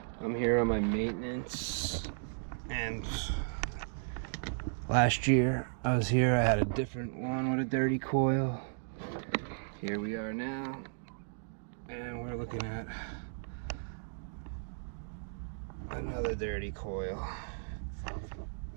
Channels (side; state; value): left; silent; digital silence